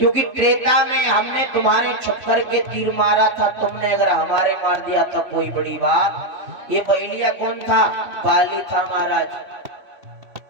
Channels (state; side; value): late; left; 3.1 ms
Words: त्रेता में हमने तुम्हारे छप्पर के तीर मारा था, तुमने अगर हमारे मार दिया तो कोई बड़ी बात। ये बैलिया कौन था? बाली था महाराज।